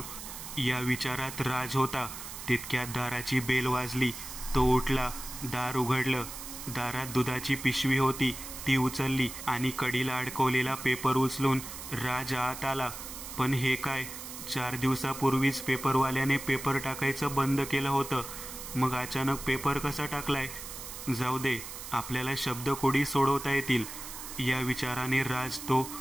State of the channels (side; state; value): right; noise; hiss, 10 dB below the sound